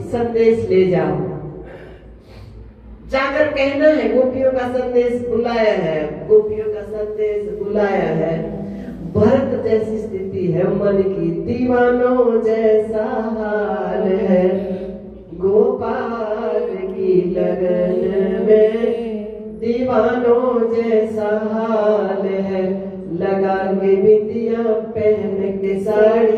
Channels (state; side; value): identical; both; correlation 1.00